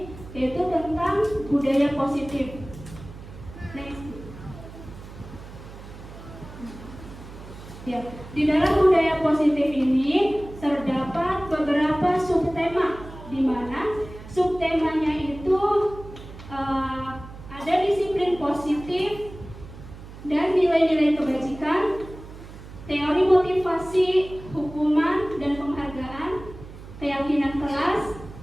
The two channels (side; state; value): right; noise; hum, 15 dB below the sound